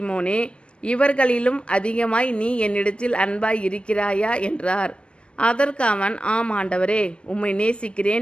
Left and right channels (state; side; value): late; right; 0.058 ms